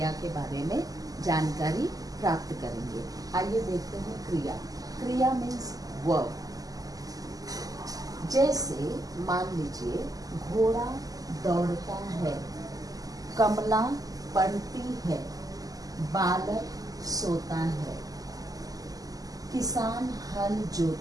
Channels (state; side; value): late; left; 0.17 ms